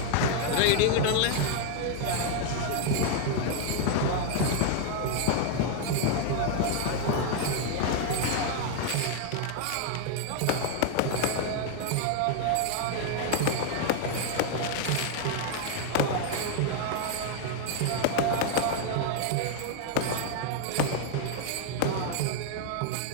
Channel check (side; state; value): both; different; correlation 0.00